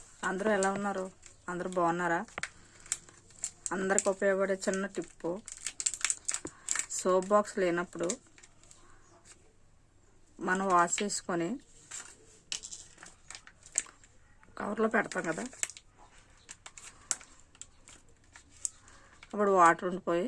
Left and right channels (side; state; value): both; identical; correlation 1.00